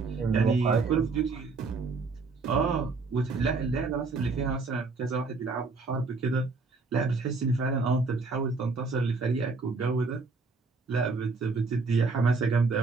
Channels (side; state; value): left; quieter; 4.1 dB